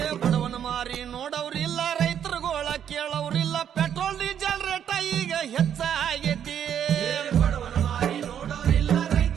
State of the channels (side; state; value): left; quieter; 9.1 dB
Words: ಬಡವನ ಮಾರಿ ನೋಡವ್ರಿಲ್ಲ ರೈತರುಗೋಳ ಕೇಳವ್ರಿಲ್ಲ ಪೆಟ್ರೋಲ್ ಡೀಸೆಲ್ ರೇಟ ಈಗ ಹೆಚ್ಚಾಗೈತಿ ಬಡವನ ಮಾರಿ ನೋಡವ್ರಿಲ್ಲ